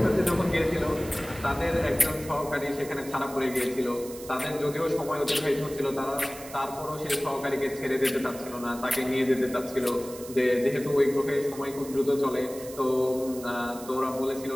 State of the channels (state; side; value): noise; right; hiss, 15 dB below the sound